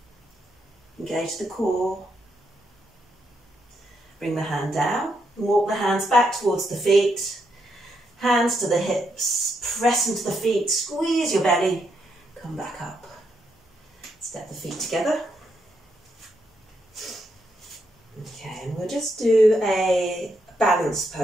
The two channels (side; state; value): both; normal; correlation 0.79